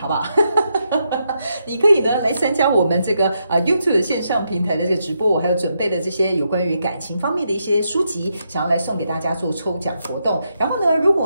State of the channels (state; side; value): inverted; both; correlation -0.81